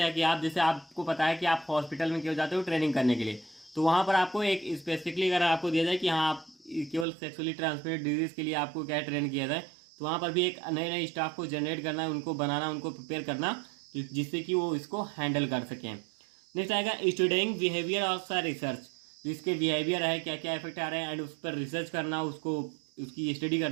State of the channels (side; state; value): left; drops out; at 7.1 s